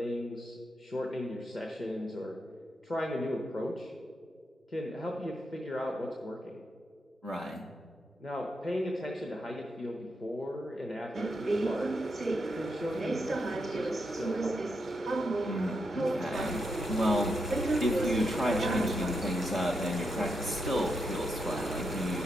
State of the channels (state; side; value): normal; both; correlation 0.83